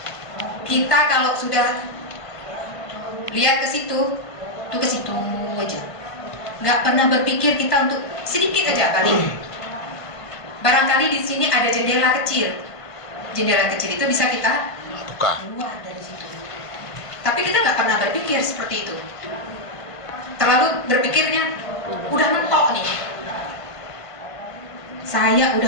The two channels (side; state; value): right; late; 1.5 ms